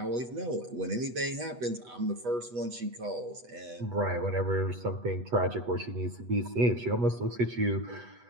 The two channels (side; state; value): left; late; 8.2 ms